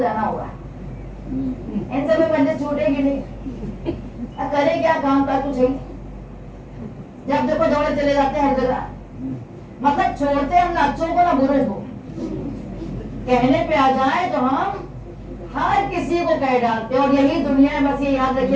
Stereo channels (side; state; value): both; identical; correlation 1.00